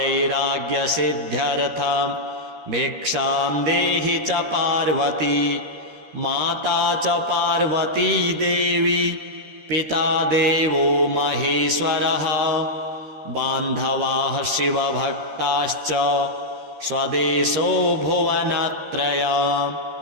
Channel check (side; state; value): left; late; 13 ms